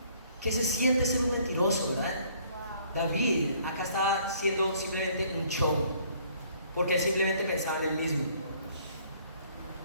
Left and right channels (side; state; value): both; inverted; correlation -0.61